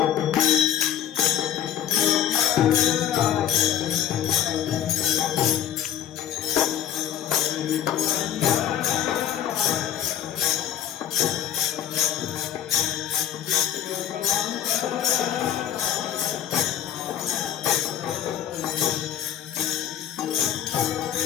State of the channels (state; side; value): quieter; right; 10.6 dB